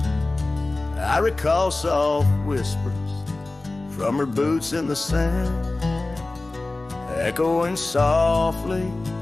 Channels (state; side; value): quieter; right; 3.1 dB